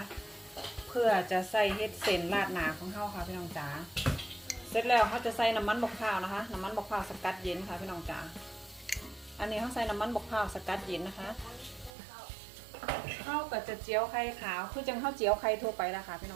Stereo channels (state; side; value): drops out; left; at 11.9 s